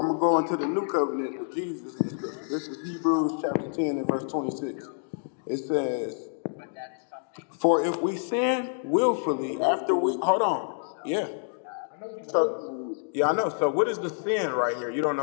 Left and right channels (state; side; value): silent; right; digital silence